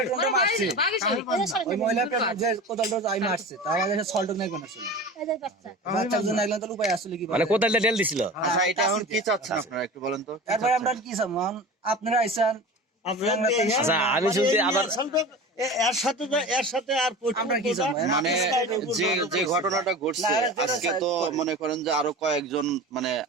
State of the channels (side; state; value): both; normal; correlation 0.33